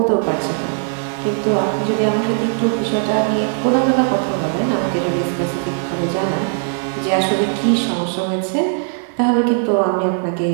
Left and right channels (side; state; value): left; silent; 67 dB below the other